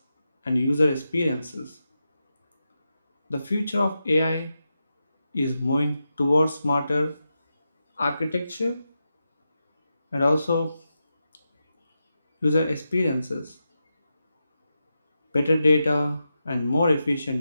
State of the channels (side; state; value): both; inverted; correlation -0.89